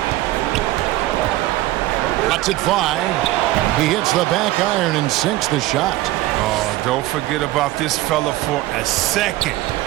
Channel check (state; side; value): quieter; left; 16.8 dB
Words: Lets it fly. He hits the back iron and sinks the shot. Oh, don't forget about this fella for a second.